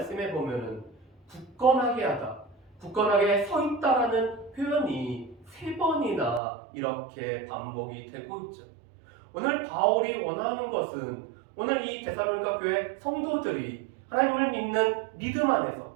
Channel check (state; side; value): drops out; left; at 6.4 s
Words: 보면은 굳건하게 하다, 굳건하게 서 있다라는 표현이 3번이나 이렇게 반복이 되고 있죠. 오늘 바울이 원하는 것은 오늘 이 데살로니가 교회 성도들이 하나님을 믿는 믿음 안에서